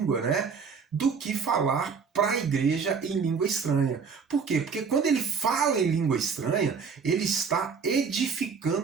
né, do que falar para a igreja em língua estranha. Por quê? Porque quando ele fala em língua estranha, ele está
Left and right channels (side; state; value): left; quieter; 5.8 dB